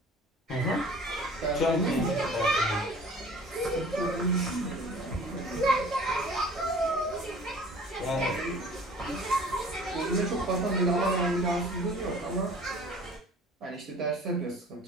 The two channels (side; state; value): both; normal; correlation 0.47